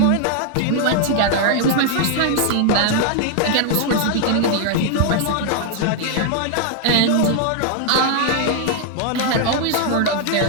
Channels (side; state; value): both; different; correlation 0.00